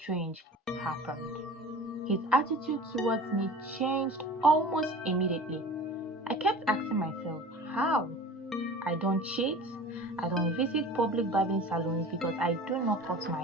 happened. His attitude towards me changed almost immediately. I kept asking myself, how? I don't cheat. I don't visit public barbing salons because I do not cut my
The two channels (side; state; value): both; normal; correlation 0.40